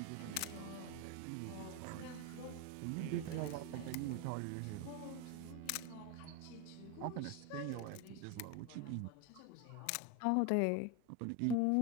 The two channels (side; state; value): both; different; correlation 0.02